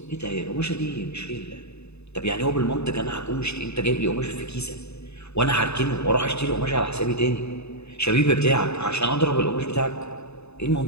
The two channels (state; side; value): late; right; 0.80 ms